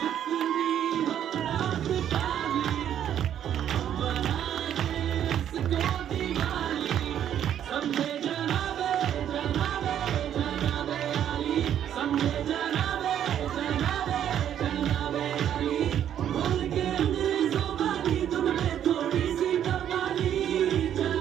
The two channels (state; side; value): quieter; left; 10.1 dB